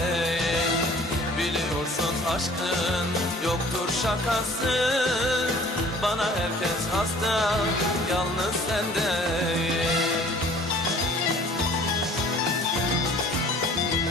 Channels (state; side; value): normal; both; correlation 0.51